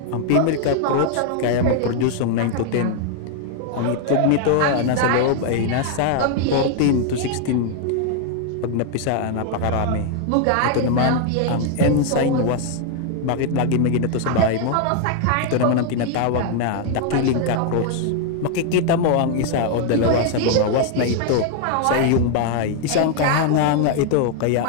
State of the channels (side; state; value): both; different; correlation 0.00